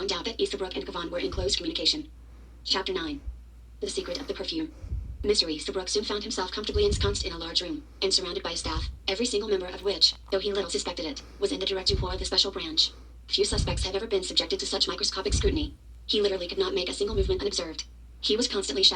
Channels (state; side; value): identical; both; correlation 1.00